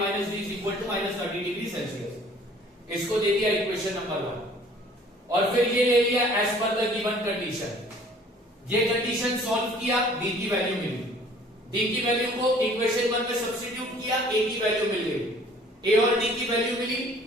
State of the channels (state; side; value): normal; both; correlation 0.54